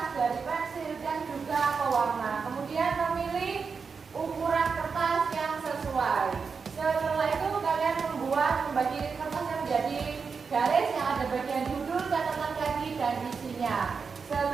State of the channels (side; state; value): left; quieter; 5.4 dB